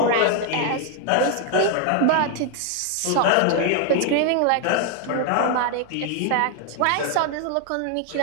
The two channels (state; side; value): different; both; correlation 0.01